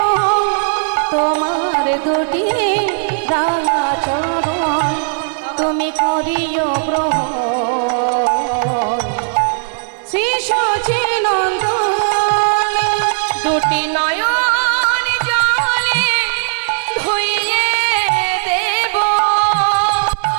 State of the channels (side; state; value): left; silent; 69 dB below the other